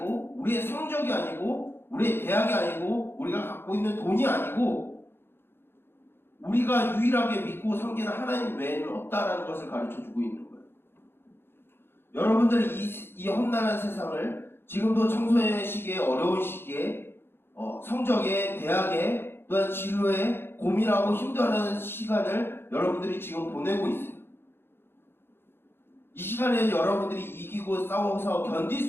우리의 성적이 아니고 우리의 대학이 아니고 우리가 갖고 있는 돈이 아니고 우리가 유일하게 믿고 섬기는 하나님 외에는 없다라는 것을 가르쳐주고 있는 거예요. 여러분들은 이 험난한 세상을 지금도 청소년의 시기에 어려운 시기에 성적에 대학에 또한 진로에 고민하고 힘들어하는 시간을 여러분들이 지금 보내고 있어요. 이 시간에 여러분들이 이기고 싸워서 견딜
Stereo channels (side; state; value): right; late; 0.11 ms